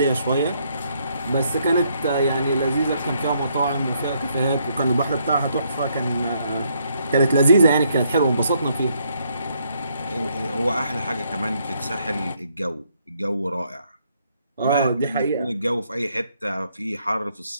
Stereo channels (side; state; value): both; inverted; correlation -0.72